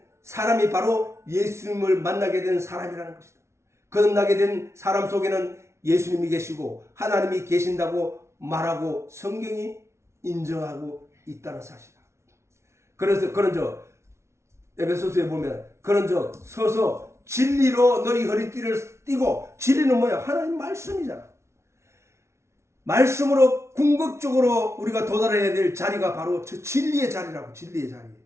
사람이 바로 예수님을 만나게 된 사람이라는 것이다. 거듭나게 된 사람 속에는 예수님이 계시고 하나님이 계신다고 말하고 성경이 인정하고 있다는 사실이다. 그래서 그런저 에베소서에 보면 그런즉 서서 진리로 너희 허리띠를 띠고, 진리는 뭐야? 하나님 말씀이잖아. 말씀으로 궁극적으로 우리가 도달해야 될 자리가 바로 저 진리의 자리라고. 진리의 자리.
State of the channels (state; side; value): late; left; 0.13 ms